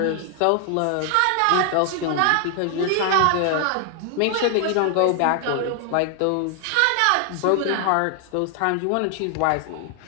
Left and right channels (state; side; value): different; both; correlation 0.00